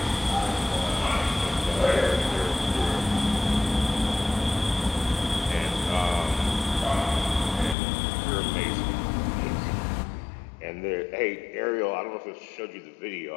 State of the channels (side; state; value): right; drops out; at 7.8 s